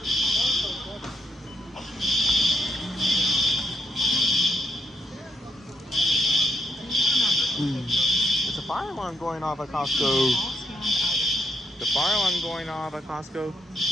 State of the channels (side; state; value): both; normal; correlation 0.77